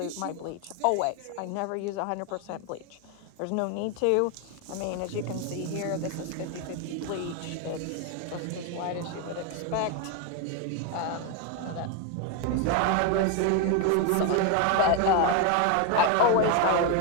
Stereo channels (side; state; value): both; different; correlation 0.01